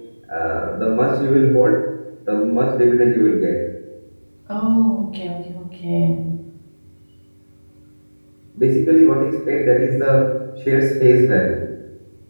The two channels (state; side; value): inverted; both; correlation -1.00